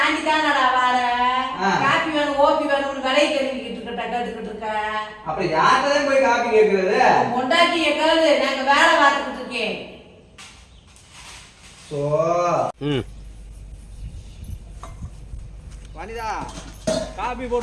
தானடா வார காப்பி வேணும் ஓபி வேணும்னு விலை கேட்டுக்கிட்டு இருக்க. அப்புறம் யார்கிட்டதான் போய் காபி கேட்கறது? பொண்டாட்டியை கேளு, நாங்க வேலை பார்த்துக்கிட்டு இருக்கேன். வனிதா காபி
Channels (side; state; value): both; identical; correlation 1.00